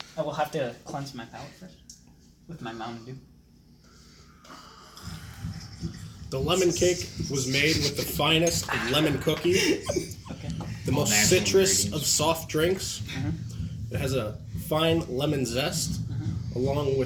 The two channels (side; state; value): both; identical; correlation 1.00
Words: I will have to cleanse my palate first with my Mountain Dew. The lemon cake was made with the finest of lemon cookies, the most citrus of soft drinks. It has a fine lemon zest, along